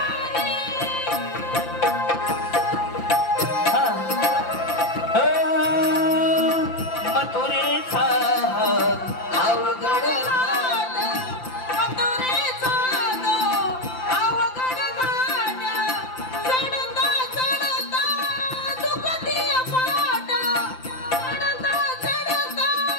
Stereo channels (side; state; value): right; late; 5.8 ms